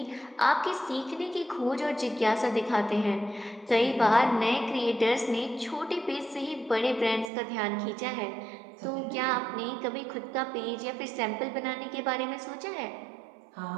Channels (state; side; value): drops out; left; at 7.3 s